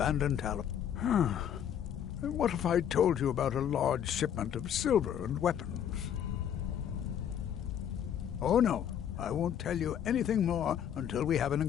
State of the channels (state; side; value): quieter; right; 9.3 dB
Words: Talos. What if I told you about a large shipment of silver and weapons? Oh no, I won't tell you anything more until we have an